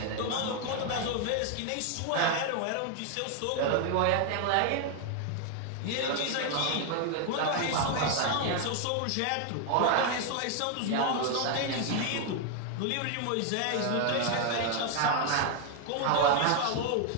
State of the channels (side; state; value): both; different; correlation 0.00